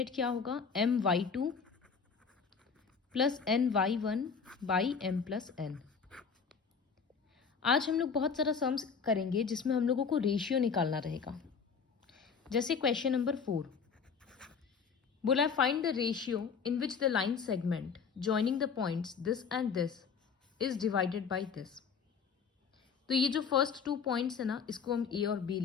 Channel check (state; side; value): quieter; right; 6.0 dB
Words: क्या होगा, my2 plus ny1 by m+n। आज हम लोग बहुत सारा सम्स करेंगे जिसमें हम लोगों को रेशियो निकालना रहेगा। जैसे क्वेश्चन नंबर 4 बोला, find the ratio in which the line segment joining the points this and this is divided by this. तो ये जो फर्स्ट टू पॉइंट्स है ना, इसको हम ए और बी